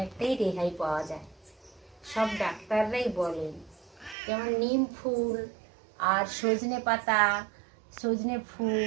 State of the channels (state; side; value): drops out; left; at 4.2 s